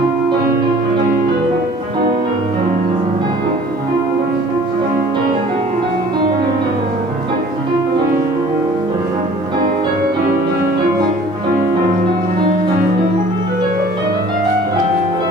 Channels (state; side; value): normal; both; correlation 0.50